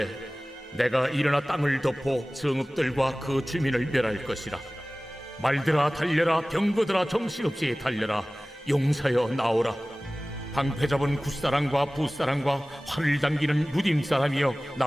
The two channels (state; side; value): normal; both; correlation 0.98